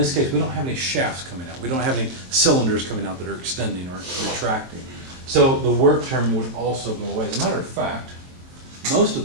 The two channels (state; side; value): late; left; 23 ms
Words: case, we don't have any shafts coming out. We don't have any cylinders coming out that are extending or retracting. So the work term would also go away. As a matter of fact, most of